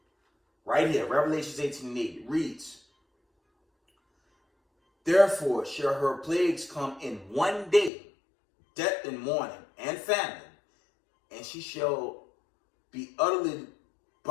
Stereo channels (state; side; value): drops out; right; at 7.9 s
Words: Right here, Revelations 18:8, it reads, therefore shall her plagues come in one day, death and mourning and famine, and she shall be utterly